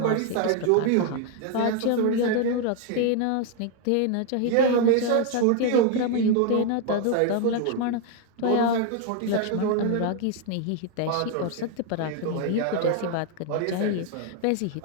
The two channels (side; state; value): both; different; correlation 0.00